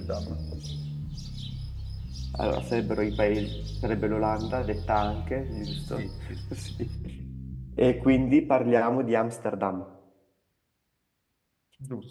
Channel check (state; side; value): identical; both; correlation 1.00